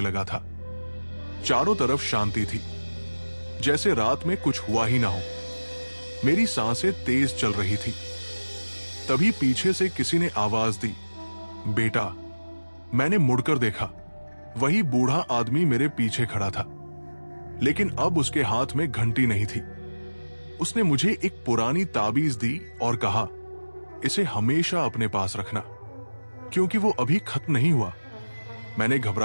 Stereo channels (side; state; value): both; inverted; correlation -1.00